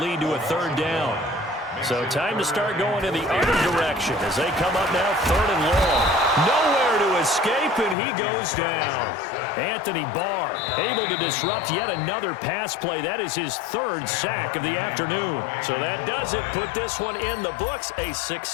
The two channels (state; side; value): drops out; right; at 8.0 s